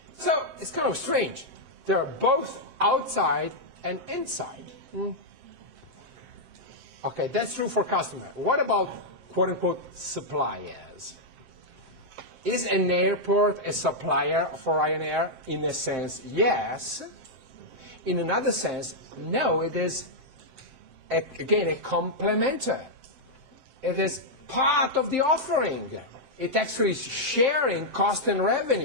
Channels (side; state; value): left; late; 7.7 ms